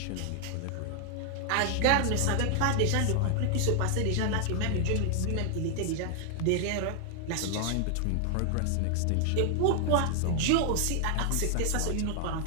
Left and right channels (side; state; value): both; different; correlation 0.00